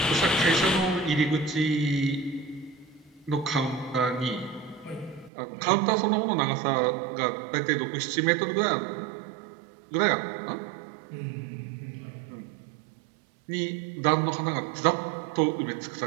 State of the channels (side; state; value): left; drops out; at 5.3 s